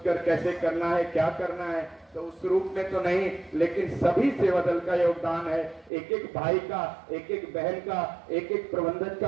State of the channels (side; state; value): left; drops out; at 5.9 s